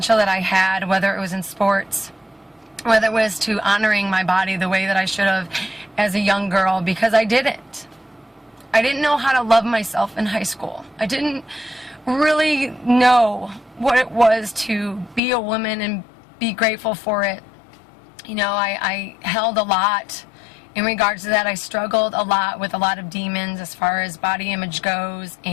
that I had, whether it was in sports, whether it was to honoring my body the way that I should have as a young girl, because I didn't. I didn't know how to love myself in high school. I didn't really know what it was to be a woman and be grateful for it. You know, I held a lot in regards to that. I struggled a lot with a lot of demons as far as body image goes,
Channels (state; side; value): drops out; right; at 15.2 s